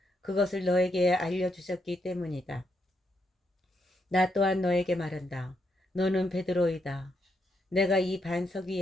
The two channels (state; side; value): normal; both; correlation 0.79